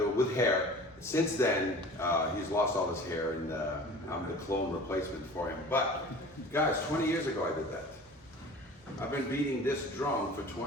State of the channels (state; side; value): normal; both; correlation 0.41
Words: with hair. Since then, he's lost all his hair and I'm the clone replacement for him. But guys, 20 years ago I did that. I've been beating this drum for